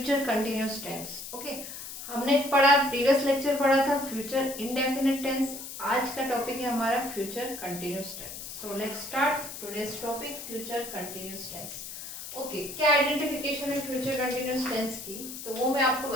continuous tense. Okay, हमने पढ़ा, प्रीवियस लेक्चर पढ़ा था फ्यूचर इंडेफिनिट टेंस। आज का टॉपिक है हमारा future continuous tense. So let's start today's topic future continuous tense. Okay, क्या आइडेंटिफिकेशन है फ्यूचर कंटिन्यूस टेंस की, तो वो मैं आपको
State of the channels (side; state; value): left; noise; hiss, 10 dB below the sound